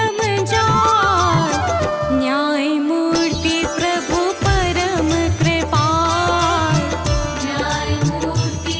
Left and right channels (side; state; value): both; identical; correlation 1.00